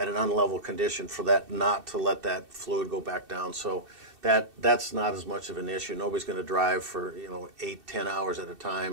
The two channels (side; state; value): left; late; 2.6 ms